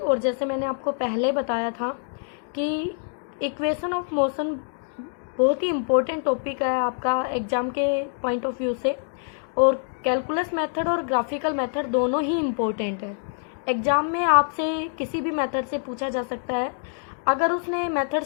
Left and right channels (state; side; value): silent; right; 61 dB below the other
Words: जैसे मैंने आपको पहले बताया था कि इक्वेशन ऑफ मोशन बहुत ही इम्पोर्टेंट टॉपिक है आपका एग्ज़ाम के पॉइंट ऑफ व्यू से, और कैलकुलस मेथड और ग्राफिकल मेथड दोनों ही इम्पोर्टेंट है। एग्ज़ाम में आपसे किसी भी मेथड से पूछा जा सकता है। अगर उसने मेथड